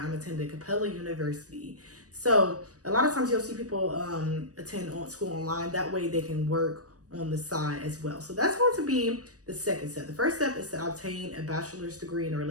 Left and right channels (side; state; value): left; late; 0.66 ms